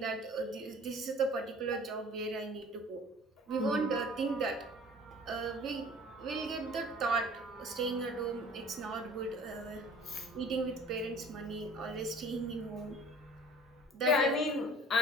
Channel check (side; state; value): both; normal; correlation 0.47